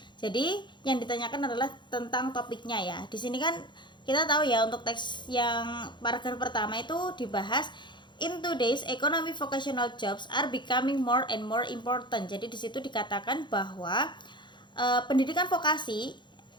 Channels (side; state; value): right; late; 0.22 ms